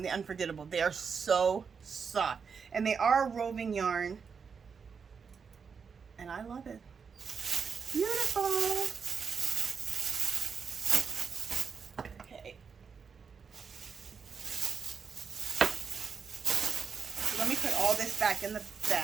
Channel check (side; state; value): left; quieter; 6.0 dB